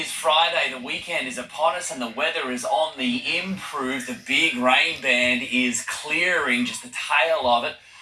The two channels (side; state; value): both; identical; correlation 1.00